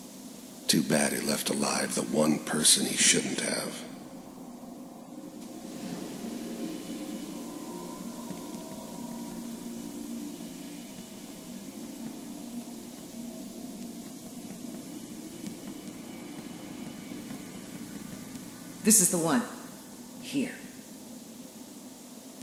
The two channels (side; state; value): both; identical; correlation 1.00